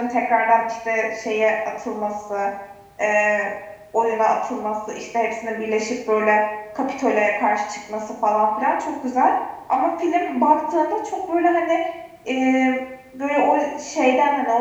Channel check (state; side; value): identical; both; correlation 1.00